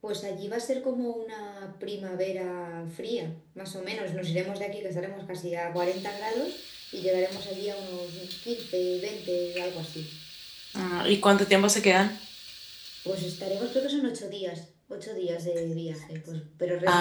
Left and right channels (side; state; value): both; identical; correlation 1.00